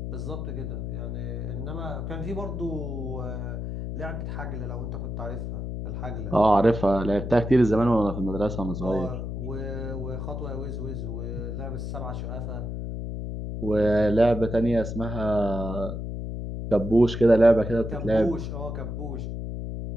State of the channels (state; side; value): noise; left; hum, 5 dB below the sound